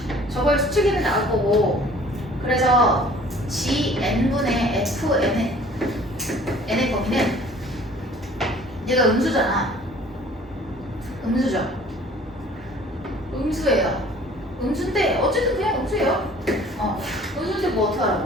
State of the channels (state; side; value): normal; both; correlation 0.51